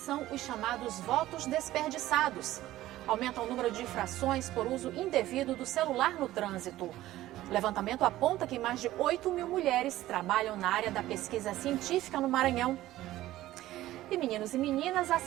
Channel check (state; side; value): quieter; left; 15.2 dB